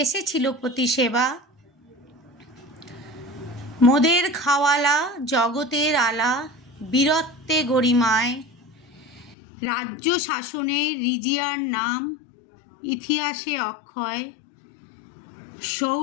এসেছিল প্রতি সেবা। মোদের খাওয়ালা জগতের আলা, বীরত্বে গরিমায়। রাজ্য শাসনের রিজিয়ার নাম ইতিহাসে অক্ষয়।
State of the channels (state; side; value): drops out; right; at 9.3 s